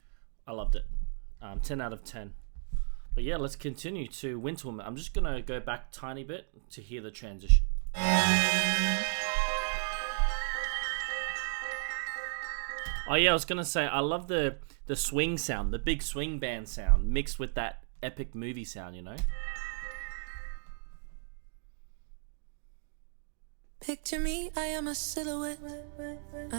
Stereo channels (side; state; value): left; silent; digital silence